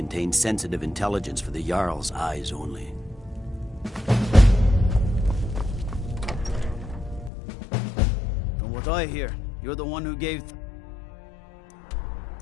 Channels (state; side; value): drops out; right; at 7.3 s